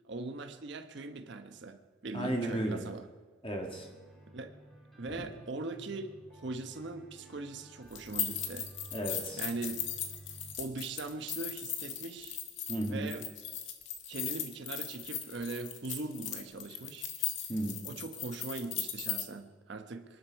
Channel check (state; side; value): normal; both; correlation 0.39